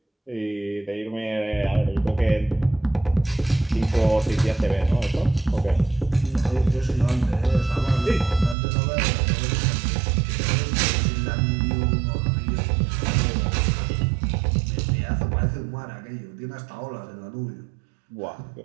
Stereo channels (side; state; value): left; drops out; at 8.6 s